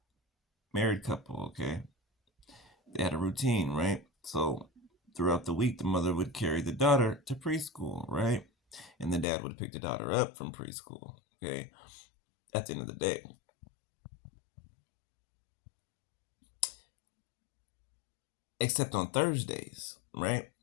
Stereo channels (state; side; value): drops out; right; at 9.2 s